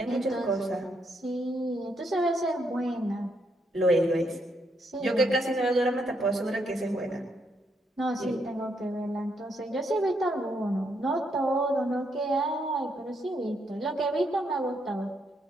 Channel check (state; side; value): normal; both; correlation 0.76